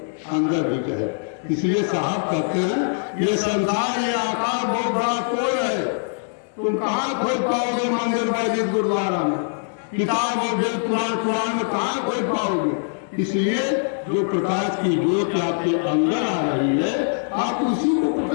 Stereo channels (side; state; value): right; silent; digital silence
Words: अंदर भी जाएगी। इसलिए साहब कहते हैं ये संसार ये आकार बहुत बड़ा कोई है, तुम कहाँ खोज पाओगे? मंदिर मस्जिद गुरुद्वारा में, किताब और वेद पुराण में कहाँ खोज पाओगे? इसलिए जो प्रकाश की ज्योत आपके अंदर आ रही है आप उसी को